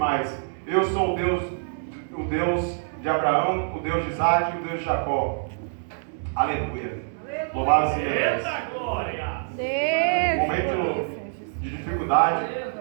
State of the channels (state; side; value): silent; left; digital silence